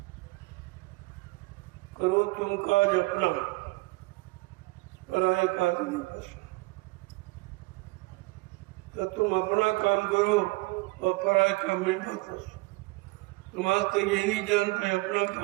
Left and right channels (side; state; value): left; quieter; 24.4 dB